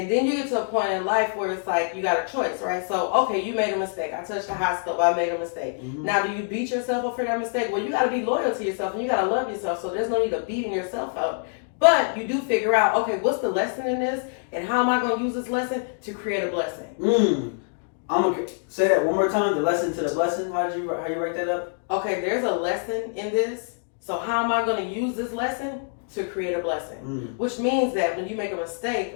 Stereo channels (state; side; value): silent; right; digital silence